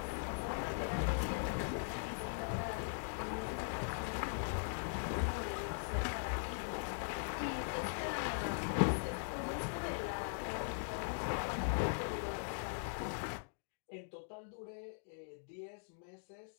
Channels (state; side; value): silent; right; digital silence